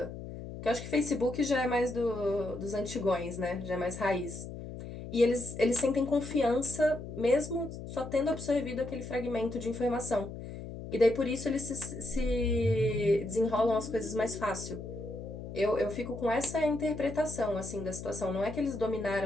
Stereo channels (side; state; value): left; noise; hum, 10 dB below the sound